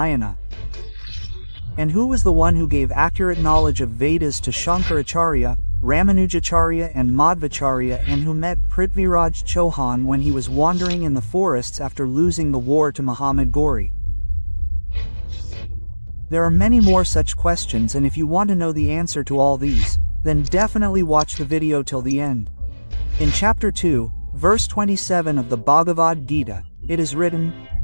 And who was the one who gave accurate knowledge of Vedas to Shankaracharya, Ramanujacharya and Madhvacharya, and who met Prithviraj Chauhan when he was wandering in the forests after losing the war to Muhammad Ghori? There are many more such questions, and if you want to know the answer to all these, then definitely watch the video till the end. In chapter 2, verse 27 of the Bhagavad Gita, it is written,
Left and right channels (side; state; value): both; inverted; correlation -1.00